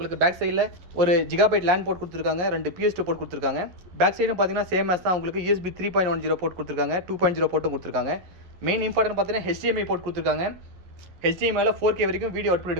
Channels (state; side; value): late; left; 11 ms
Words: பேக் சைடில் ஒரு ஜிகாபைட் லேண்ட் போர்ட் கொடுத்துருக்காங்க, 2 PS2 போர்ட் கொடுத்துருக்காங்க. பேக் சைடும் பார்த்தீங்கன்னா சேம் மேஸ் தான், உங்களுக்கு USB 3.10 போர்ட் கொடுத்துருக்காங்க, 2.0 போர்ட்டும் கொடுத்துருக்காங்க. மெயின் இம்பார்ட்டன்ட் பார்த்தீங்கன்னா HDMI போர்ட் கொடுத்துருக்காங்க. HDMI 4K வரைக்கும் வீடியோ அவுட்புட்